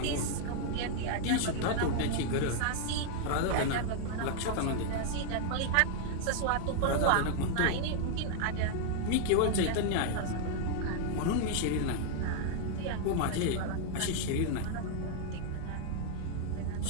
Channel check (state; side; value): different; both; correlation 0.00